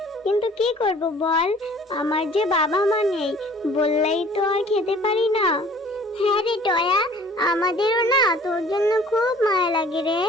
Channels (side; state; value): both; normal; correlation 0.52